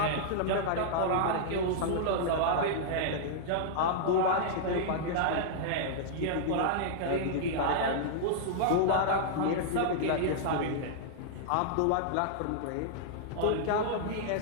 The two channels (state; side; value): different; both; correlation -0.01